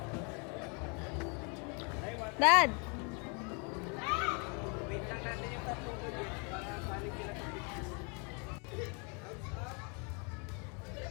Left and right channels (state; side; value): quieter; right; 34.7 dB